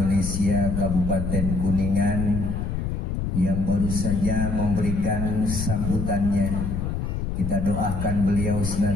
Kabupaten Kuningan yang baru saja memberikan sambutannya. Kita doakan beliau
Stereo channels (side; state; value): left; noise; rumble, 2 dB below the sound